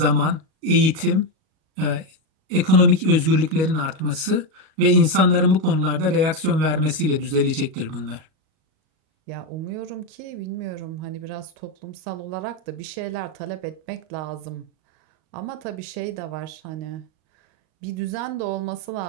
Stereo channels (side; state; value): left; late; 38 ms